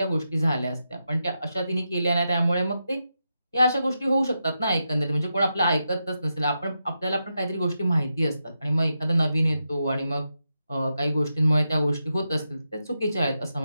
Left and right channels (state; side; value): inverted; both; correlation -0.87